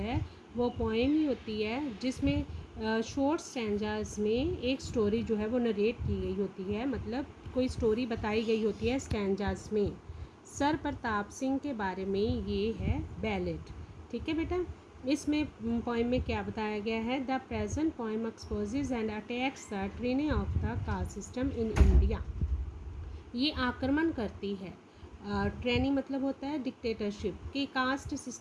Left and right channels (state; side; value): identical; both; correlation 1.00